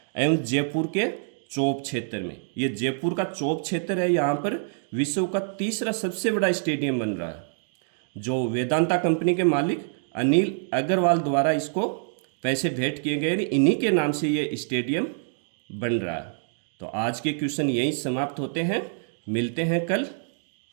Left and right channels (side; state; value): left; silent; digital silence